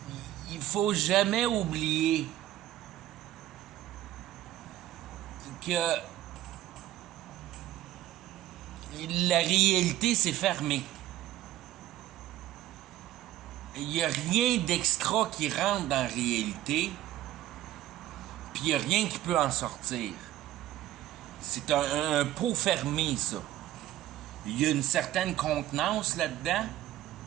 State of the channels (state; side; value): quieter; left; 13.9 dB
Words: Il faut jamais oublier que la réalité, c'est fermé. Il n'y a rien d'extra qui rentre dans la réalité, puis il n'y a rien qui peut en sortir. C'est un pot fermé, ça. Il y a une certaine contenance là-dedans,